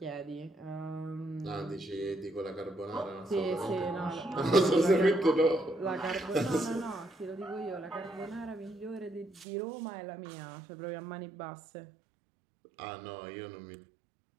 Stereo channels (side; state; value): left; drops out; at 9.5 s